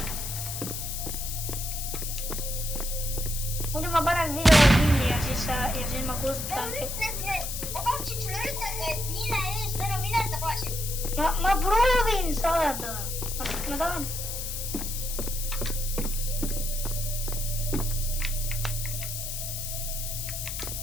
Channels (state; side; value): noise; left; hiss, 5 dB below the sound